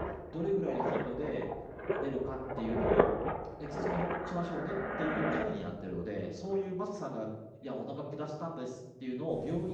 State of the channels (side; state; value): both; identical; correlation 1.00